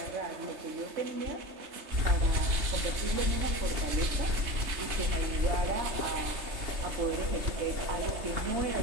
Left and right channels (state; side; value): late; left; 3.3 ms